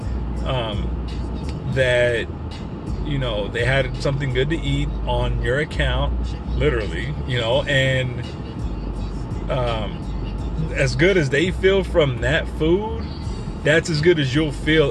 that, you know, they had something good to eat on your account, literally, you know, and as good as they feel from that food, that's as good as you'll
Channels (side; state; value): both; identical; correlation 1.00